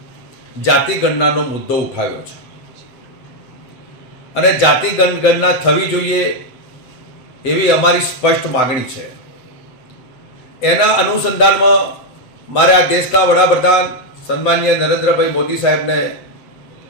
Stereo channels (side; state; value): right; late; 7.9 ms